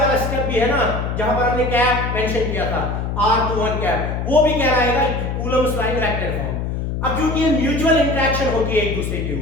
स्टेप भी है ना, जहां पर हमने कैप मेंशन किया था R21 कैप, वो भी कह रहा है Coulomb's law in vector form. अब क्योंकि ये म्यूचुअल इंटरेक्शन होती है एक दूसरे के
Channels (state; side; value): noise; left; hum, 3 dB below the sound